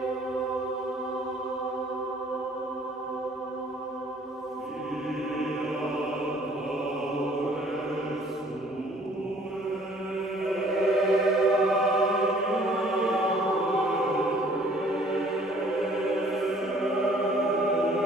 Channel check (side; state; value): both; normal; correlation 0.57